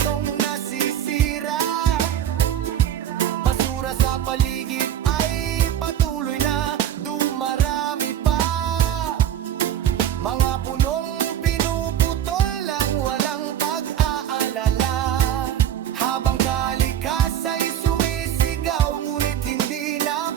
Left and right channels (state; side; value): quieter; left; 10.3 dB